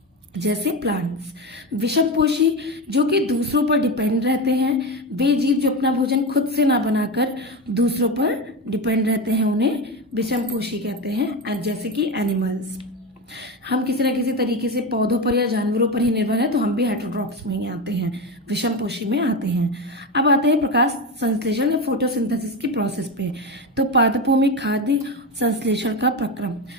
जैसे प्लांट्स। विषमपोषी जो कि दूसरों पर डिपेंड रहते हैं, वे जीव जो अपना भोजन खुद से ना बनाकर दूसरों पर डिपेंड रहते हैं, उन्हें विषमपोषी कहते हैं, जैसे कि एनिमल्स। हम किसी न किसी तरीके से पौधों पर या जानवरों पर ही निर्भर है, तो हम भी हेटेरोट्रॉप्स में ही आते हैं, विषमपोषी में आते हैं। अब आते हैं प्रकाश संश्लेषण या फोटोसिंथेसिस की प्रोसेस पे। तो पादपों में खाद्य संश्लेषण का प्रक्रम।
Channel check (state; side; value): normal; both; correlation 0.18